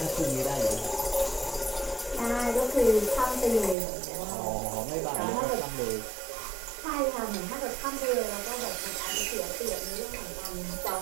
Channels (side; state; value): left; drops out; at 3.8 s